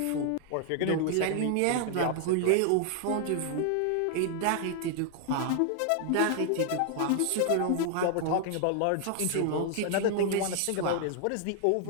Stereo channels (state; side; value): different; both; correlation 0.00